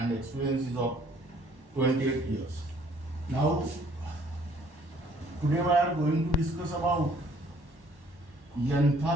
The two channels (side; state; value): left; late; 1.1 ms